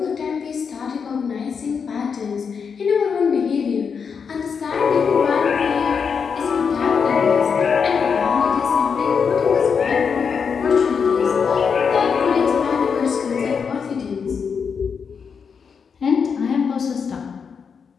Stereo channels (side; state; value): right; quieter; 6.2 dB